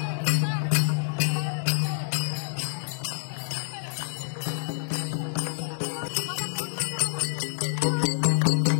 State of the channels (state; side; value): silent; right; digital silence